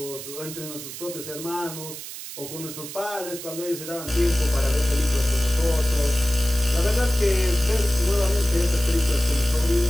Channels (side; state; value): right; noise; hiss, 11 dB below the sound